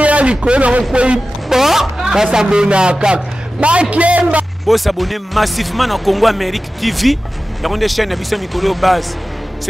likona ko ba s'abonner ka ba kemba bo s'abonner massivement na Congo Amérique TV ya konde chaîne na biso mikolo base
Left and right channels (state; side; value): normal; both; correlation 0.95